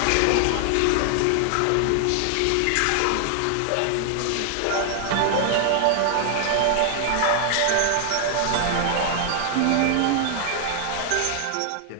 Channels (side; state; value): both; different; correlation 0.00